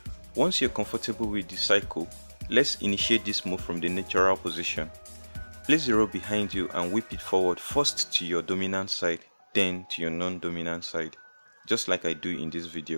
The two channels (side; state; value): both; inverted; correlation -1.00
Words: Once you're comfortable with the cycle, let's initiate this move from the natural position. Place the rope behind you and whip it forward, first to your dominant side, then to your non-dominant side, just like I do in this